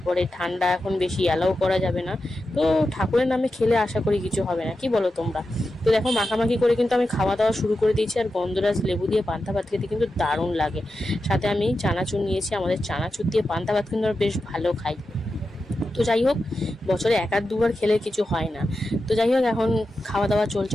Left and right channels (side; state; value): both; normal; correlation 0.90